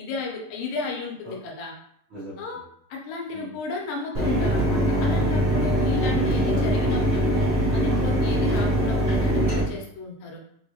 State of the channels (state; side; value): normal; both; correlation 0.44